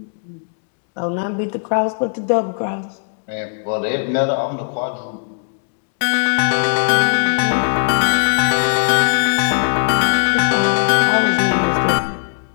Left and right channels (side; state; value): right; silent; digital silence